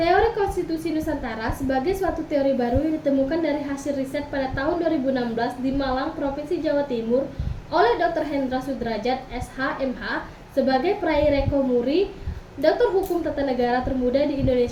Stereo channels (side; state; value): both; identical; correlation 1.00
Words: konstitusi Nusantara sebagai suatu teori baru yang ditemukan dari hasil riset pada tahun 2016 di Malang, Provinsi Jawa Timur oleh Dr. Hendra Sudrajat, SH.MH, sebagai peraih Reko Muri, Doktor Hukum Tata Negara termuda di